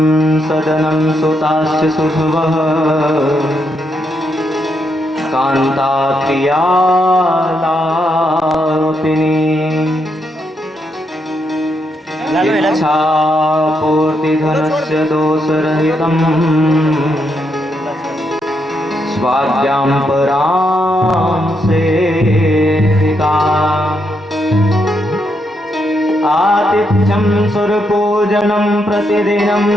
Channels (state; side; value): normal; both; correlation 0.79